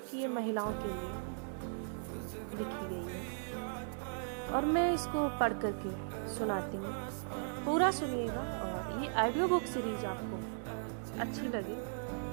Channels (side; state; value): left; silent; digital silence